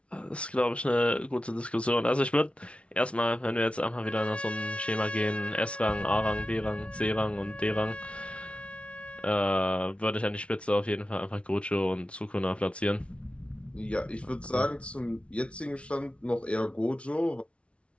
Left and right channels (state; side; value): late; right; 0.061 ms